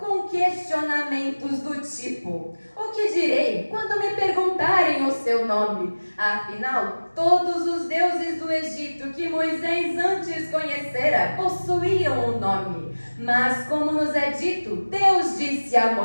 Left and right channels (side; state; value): both; inverted; correlation -1.00